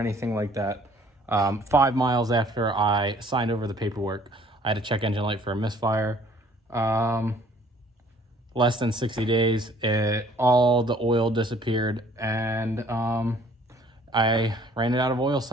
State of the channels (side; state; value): both; normal; correlation 0.57